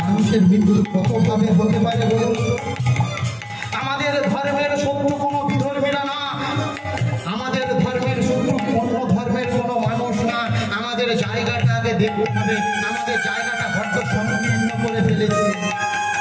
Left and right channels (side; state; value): both; identical; correlation 1.00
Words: মানুষের মৃত্যু কত ভাবে হতে পারে বলুন? আমাদের ধর্মের শত্রু কোনো বিধর্মীরা না, আমাদের ধর্মের শত্রু অন্য ধর্মের কোনো মানুষ না। আমাদের জায়গাটা আগে দেখতে হবে, আমাদের জায়গাটা বড্ড সংকীর্ণ করে ফেলেছে।